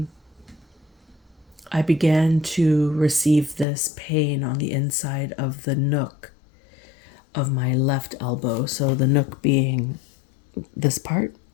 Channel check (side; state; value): right; drops out; at 3.7 s